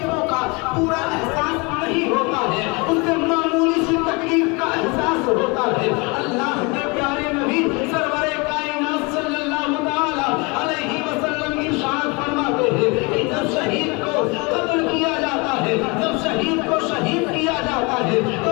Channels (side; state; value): right; quieter; 28.4 dB